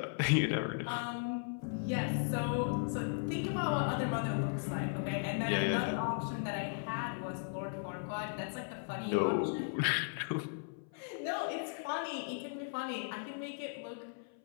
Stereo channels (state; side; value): silent; right; 53 dB below the other